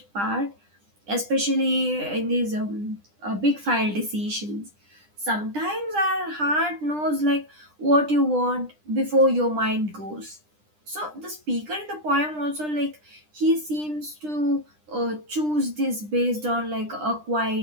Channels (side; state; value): left; late; 9.9 ms